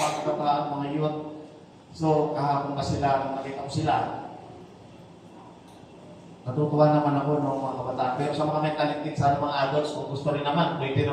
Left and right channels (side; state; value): both; identical; correlation 1.00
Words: kabataan, mga youth. So, kahapon pa sila, nakita ko sila. Natutuwa naman ako, mga kabataan. Pero sa mga may talented, sana mga adults, kung gusto rin naman, pwede